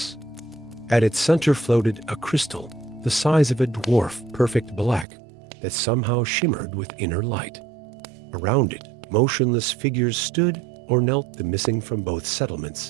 At its center floated a crystal, the size of a dwarf, perfect black, that somehow shimmered with inner light. Around it, motionless figures stood or knelt, the missing from both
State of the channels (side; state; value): left; drops out; at 5.1 s